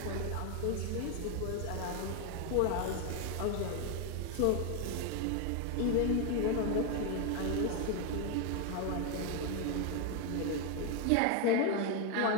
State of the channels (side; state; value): both; different; correlation 0.01